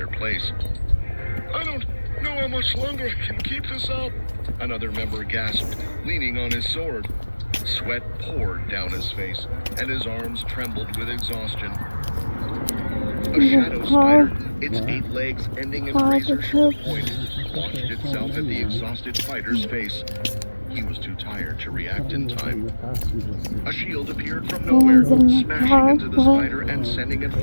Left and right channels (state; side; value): inverted; both; correlation -1.00